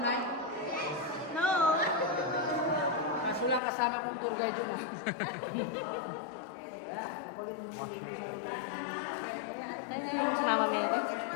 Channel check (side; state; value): right; drops out; at 3.6 s